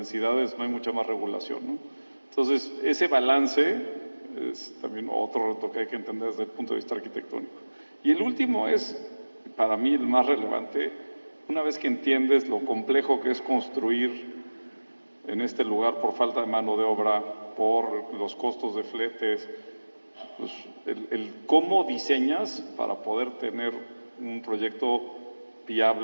no hay mucha más regulación, ¿no? Entonces ese balance Es también otro reto que hay que entender desde el punto de vista arquitectónico. Y el último es, para mí, el más relevante. Una vez que entiendes lo complejo que es construir en este lugar por falta de mano de obra, por los costos de fletes, pues el cómo diseñas para poder tener un proyecto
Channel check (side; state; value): both; inverted; correlation -1.00